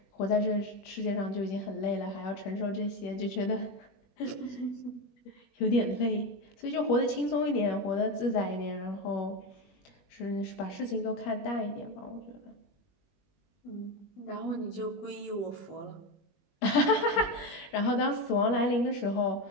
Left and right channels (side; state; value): right; late; 21 ms